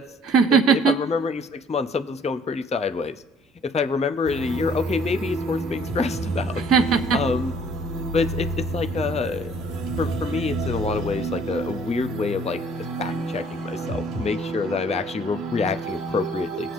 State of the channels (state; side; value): normal; both; correlation 0.58